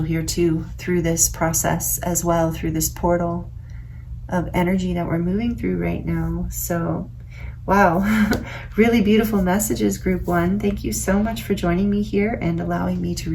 here too, through this process as well, through this portal of energy that we're moving through right now. So wow, really beautiful messages, group one. Thank you so much for joining me here and allowing me to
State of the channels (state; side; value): identical; both; correlation 1.00